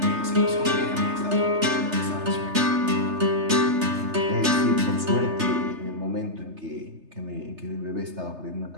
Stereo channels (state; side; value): late; left; 3.3 ms